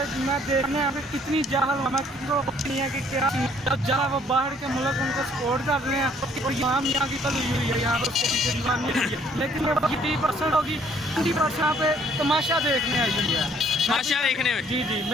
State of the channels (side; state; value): both; normal; correlation 0.62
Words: मैं देखने यहाँ पे कितनी जाहल हमें नहीं है कि क्या जहाँ वो बाहर के मुल्क उनको सपोर्ट कर रहे हैं और यहाँ की कल हुई है, यहाँ पर उसके पीछे दीवानी हुई है। लेकिन ये 30% होगी, 20% यहाँ पे तमाशा देखने आई हुई है। तमाशा देखने में? जी जी,